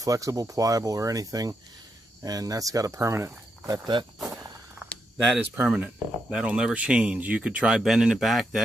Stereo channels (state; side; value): normal; both; correlation 0.82